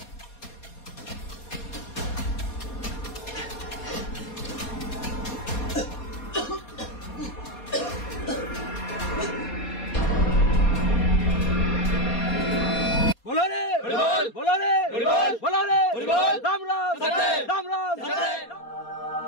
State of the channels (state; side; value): late; right; 4.2 ms